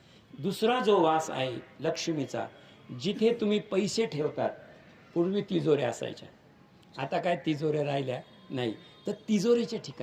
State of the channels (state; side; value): identical; both; correlation 1.00